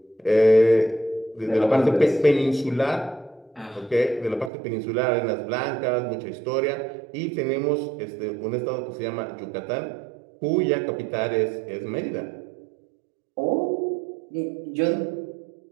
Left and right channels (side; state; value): left; drops out; at 4.5 s